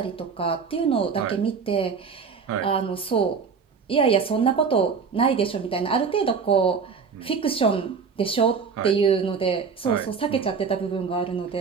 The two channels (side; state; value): left; quieter; 5.7 dB